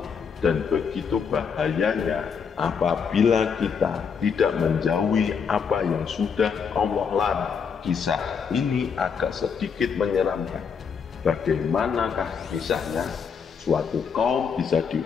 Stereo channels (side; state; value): right; quieter; 6.3 dB